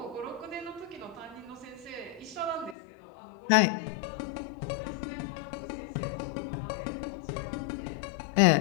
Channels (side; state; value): right; drops out; at 2.8 s